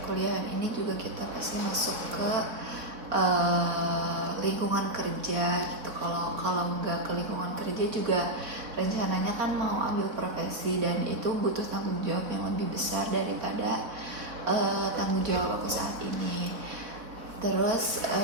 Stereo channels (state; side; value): late; left; 4.1 ms